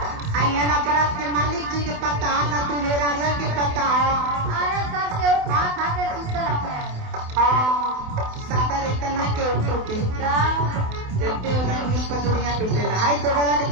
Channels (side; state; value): left; late; 28 ms